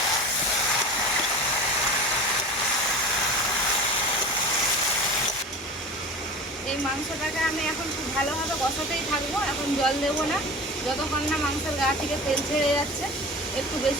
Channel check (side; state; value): both; normal; correlation 0.35